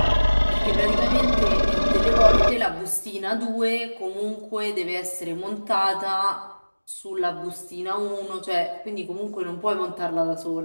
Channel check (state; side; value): inverted; both; correlation -1.00